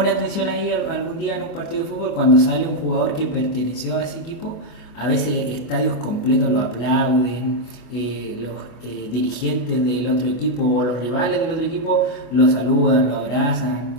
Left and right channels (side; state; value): right; late; 24 ms